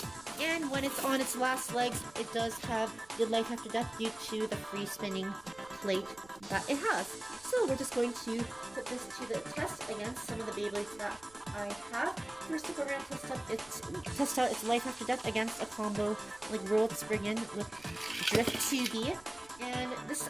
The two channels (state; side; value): noise; right; rumble, 25 dB below the sound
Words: and when it's on its last legs, it does have good life after death due to the free spinning plate that it has. So we're just going to put this to the test against some of the Beyblades that I have. First up, we're going to test out its life after death against a combo like World Spriggan with Drift 2B. And this is